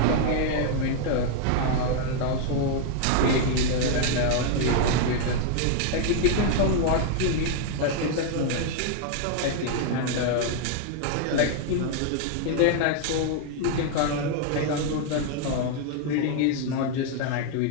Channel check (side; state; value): both; different; correlation 0.00